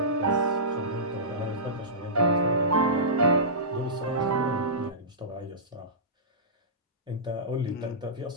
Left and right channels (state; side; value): normal; both; correlation -0.20